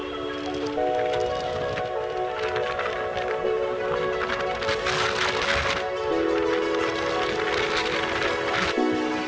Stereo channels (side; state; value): both; identical; correlation 1.00